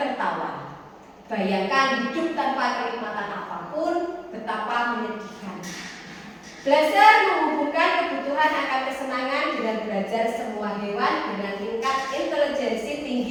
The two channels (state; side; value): identical; both; correlation 1.00